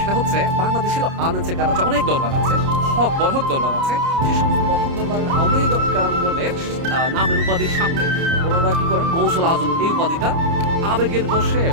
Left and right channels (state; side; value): late; left; 30 ms